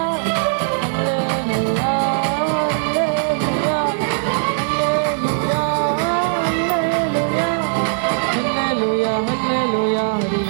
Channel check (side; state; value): left; silent; digital silence